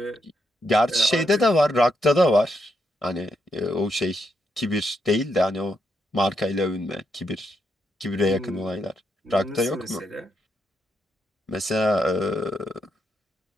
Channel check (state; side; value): normal; both; correlation 0.81